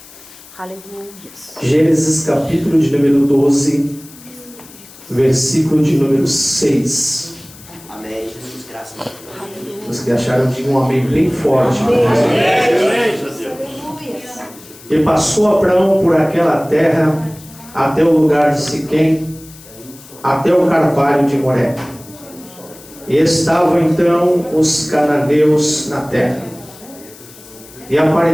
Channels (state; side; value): noise; left; hiss, 21 dB below the sound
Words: Aleluia. Gênesis capítulo de número 12, versículo de número 6. Amém, Jesus, graças a Deus. Os que acharam de um amém bem forte. E passou Abraão por aquela terra até o lugar de Siquém, até o carvalho de Moré. E estavam então os cananeus na terra. E